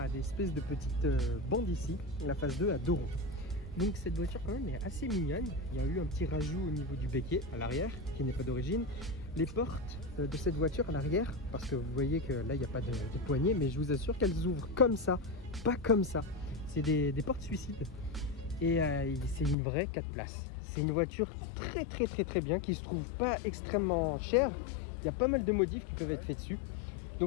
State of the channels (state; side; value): drops out; right; at 19.6 s